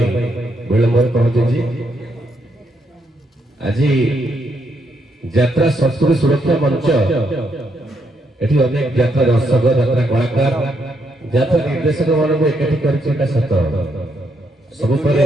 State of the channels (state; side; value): normal; both; correlation 0.77